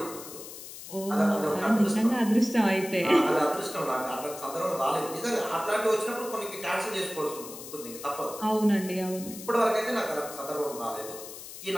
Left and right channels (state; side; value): noise; left; hiss, 13 dB below the sound